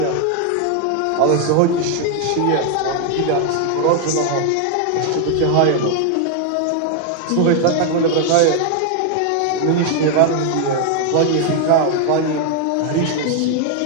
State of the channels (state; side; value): different; both; correlation 0.00